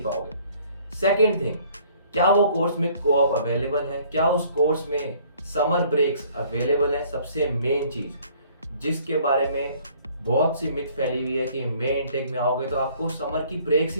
पाओगे। सेकेंड थिंग, क्या वो कोर्स में कोऑप अवेलेबल है? क्या उस कोर्स में समर ब्रेक्स अवेलेबल है? सबसे मेन चीज जिसके बारे में बहुत सी मिथ फैली हुई है कि मई इनटेक में आओगे तो आपको समर की ब्रेक्स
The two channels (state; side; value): inverted; both; correlation -0.58